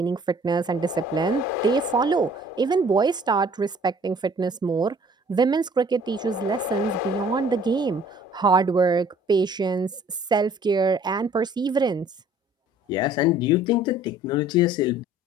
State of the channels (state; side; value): normal; both; correlation 0.54